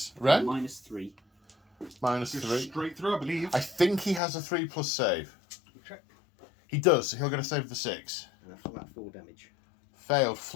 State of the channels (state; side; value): drops out; right; at 4.2 s